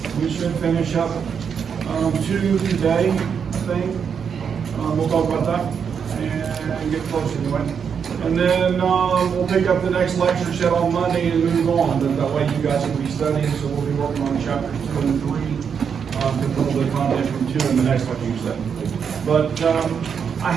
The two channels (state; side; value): quieter; left; 6.9 dB